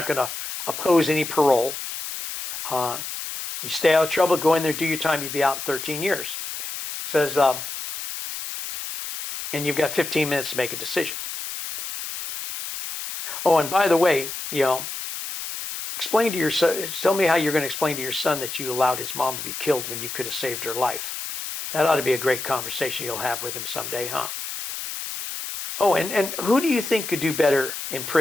going to oppose any parole. You stay out of trouble, go in there, do your time, you'll be out in 13 years. Says, and you've got 15 minutes to make a decision. Oh, and by the way, explain to your son, tell me how you're going to explain to your son that you allowed his mom to be killed when you could have saved her life. That ought to be a great conversation you'll have with him someday, huh? Oh, and who do you think could do better in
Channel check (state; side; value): noise; left; hiss, 7 dB below the sound